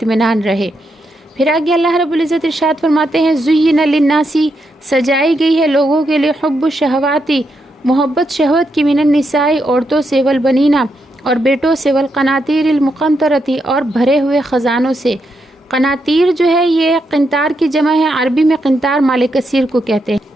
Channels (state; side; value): normal; both; correlation 0.82